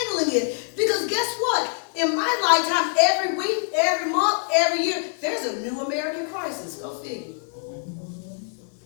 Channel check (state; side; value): silent; right; 62 dB below the other